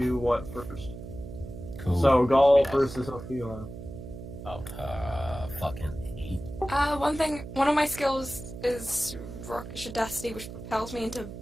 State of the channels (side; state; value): right; noise; hum, 11 dB below the sound